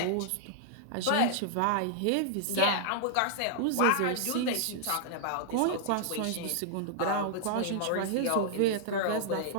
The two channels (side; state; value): both; different; correlation -0.01